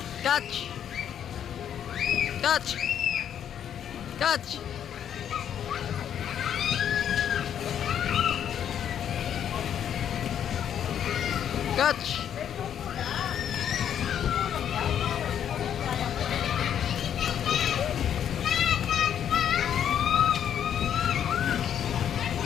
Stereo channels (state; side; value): quieter; right; 9.3 dB